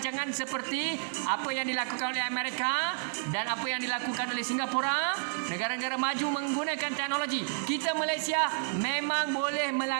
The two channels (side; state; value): left; silent; 57 dB below the other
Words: seperti apa yang dilakukan oleh Amerika dan apa yang dilakukan oleh Singapura, negara-negara maju menggunakan teknologi. Kita Malaysia memang boleh